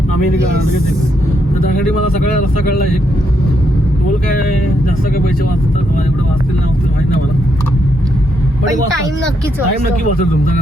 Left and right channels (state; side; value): normal; both; correlation 0.78